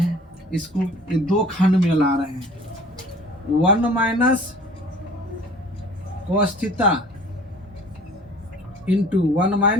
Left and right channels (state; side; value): normal; both; correlation 0.49